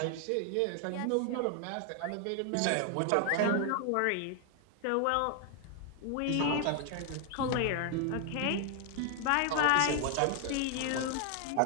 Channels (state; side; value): different; both; correlation 0.00